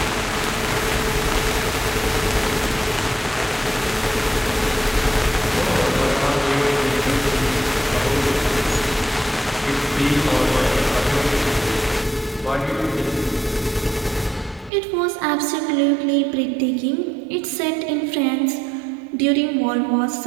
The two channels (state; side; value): drops out; left; at 14.7 s